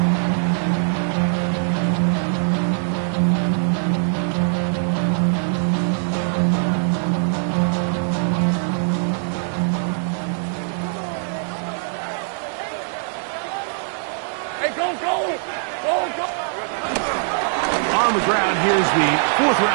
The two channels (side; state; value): left; silent; 64 dB below the other